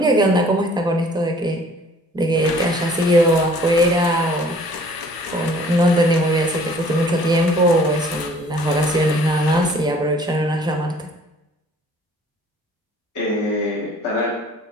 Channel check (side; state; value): both; normal; correlation 0.54